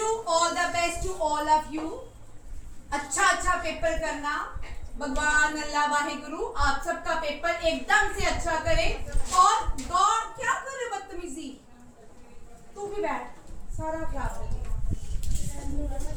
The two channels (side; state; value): both; identical; correlation 1.00